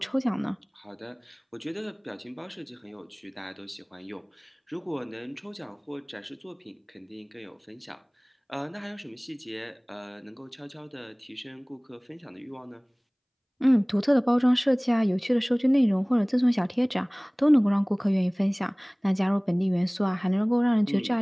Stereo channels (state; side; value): identical; both; correlation 1.00